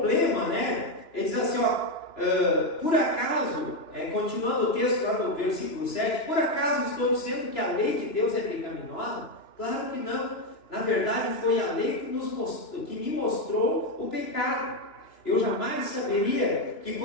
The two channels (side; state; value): right; late; 2.9 ms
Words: ele diz assim, por acaso, continuando o texto lá no versículo 7, por acaso estou dizendo que a lei de Deus é pecaminosa? Claro que não. Na verdade, foi a lei que me mostrou o pecado. Eu jamais saberia que